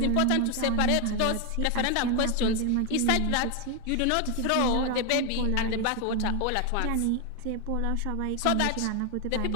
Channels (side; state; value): both; different; correlation 0.01